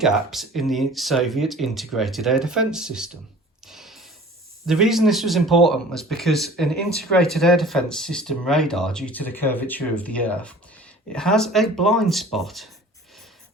in the Soviet integrated air defence system. The reason this was important was because an integrated air defence system radar, due to the curvature of the Earth, it has a blind spot.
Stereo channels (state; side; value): normal; both; correlation 0.45